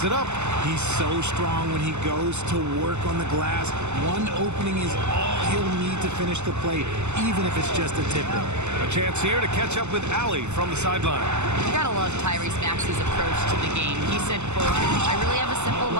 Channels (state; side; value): late; left; 0.83 ms